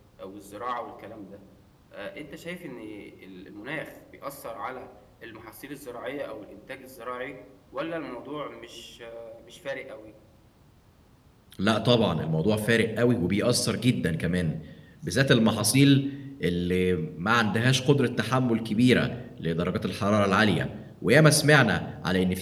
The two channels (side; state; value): both; identical; correlation 1.00